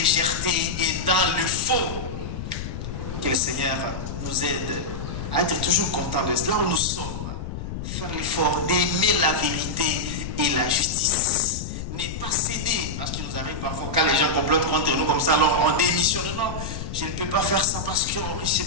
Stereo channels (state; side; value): noise; left; rumble, 6 dB below the sound